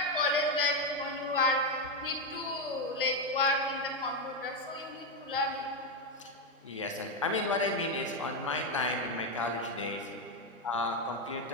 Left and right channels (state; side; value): normal; both; correlation 0.06